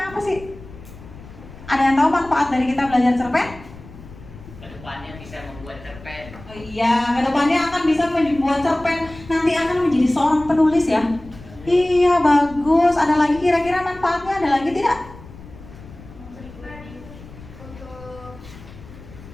apa sih? Ada yang tahu manfaat dari kita belajar cerpen? Kedepannya bisa membuat cerpen. Oh iya, kedepannya akan bisa membuat cerpen. Nanti akan menjadi seorang penulis ya. Iya, bagus. Ada lagi kira-kira manfaatnya? Ada lagi tidak?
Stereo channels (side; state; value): left; noise; rumble, 18 dB below the sound